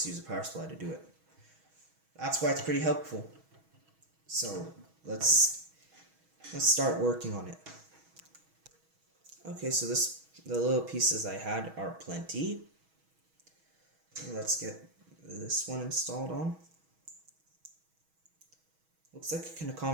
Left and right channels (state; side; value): late; left; 6.2 ms